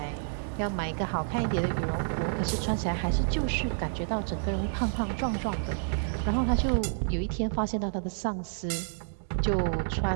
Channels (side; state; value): left; silent; digital silence